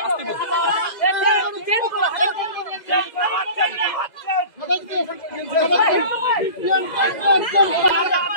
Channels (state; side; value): late; right; 2.0 ms